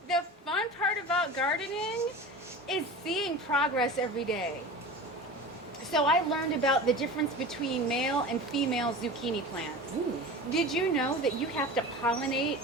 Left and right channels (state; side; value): normal; both; correlation 0.34